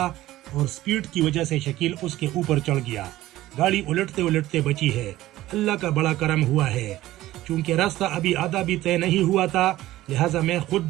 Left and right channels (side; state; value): left; quieter; 15.7 dB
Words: اور سپیڈ کی وجہ سے شکیل اس کے اوپر چڑھ گیا. گاڑی الٹتے الٹتے بچی ہے. اللہ کا بڑا کرم ہوا ہے. چونکہ راستہ ابھی آدھا بھی طے نہیں ہوا تھا لہٰذا میں